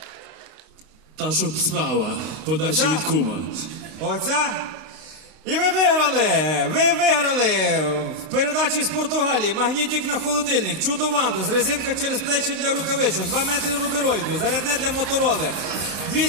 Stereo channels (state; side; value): late; left; 32 ms